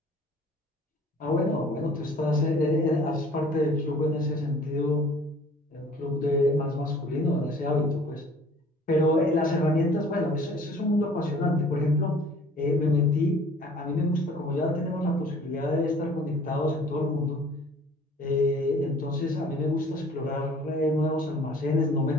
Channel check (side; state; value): both; normal; correlation 0.51